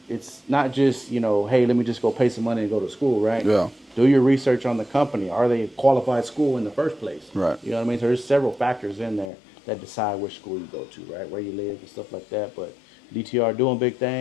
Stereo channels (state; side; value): drops out; right; at 9.3 s